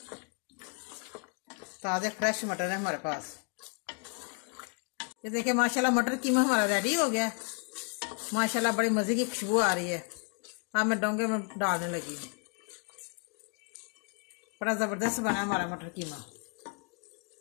ताज़े फ्रेश मटर है हमारे पास। ये देखिए माशाल्लाह मटर कीमा हमारा रेडी हो गया। माशाल्लाह बड़ी मज़े की खुशबू आ रही है। अब मैं डोंगे में डालने लगी हूँ। बड़ा ज़बरदस्त बना हमारा मटर कीमा।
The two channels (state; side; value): quieter; right; 34.5 dB